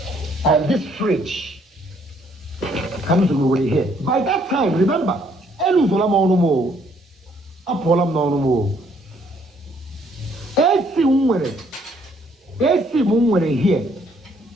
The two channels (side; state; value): both; normal; correlation 0.66